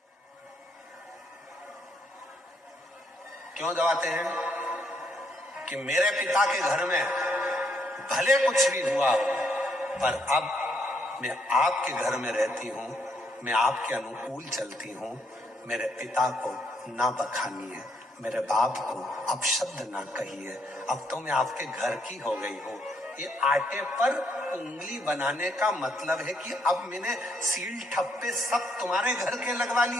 क्यों दबाते हैं? कि मेरे पिता के घर में भले कुछ भी हुआ हो, पर अब मैं आपके घर में रहती हूं, मैं आपके अनुकूल चलती हूं। मेरे पिता को ना बखानिए, मेरे बाप को अपशब्द ना कहिए, अब तो मैं आपके घर की हो गई हूँ। ये आटे पर उंगली बनाने का मतलब है कि अब मैंने सील ठप्पे सब तुम्हारे घर के लगवा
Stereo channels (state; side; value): normal; both; correlation 0.73